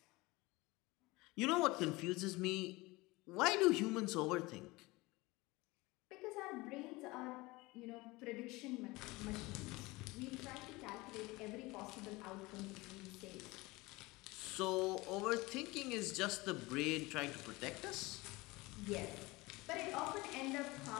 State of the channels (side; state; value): right; quieter; 22.2 dB